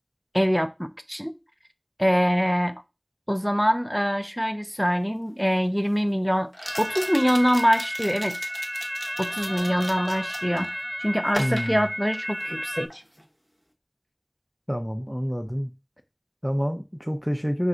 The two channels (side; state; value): both; identical; correlation 1.00